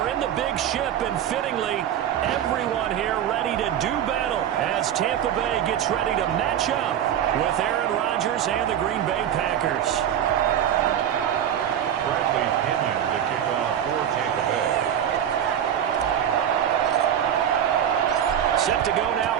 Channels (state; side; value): quieter; left; 10.0 dB